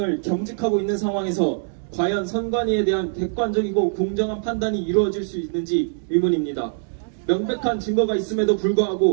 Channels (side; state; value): left; silent; digital silence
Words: 겸직하고 있는 상황에서 과연 선관위에 대한 객관적이고 공정한 판단이 이루어질 수 있는지 의문입니다. 명백한 증거가 있음에도